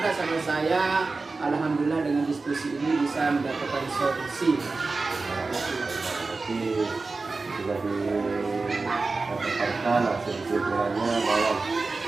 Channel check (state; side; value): quieter; left; 3.8 dB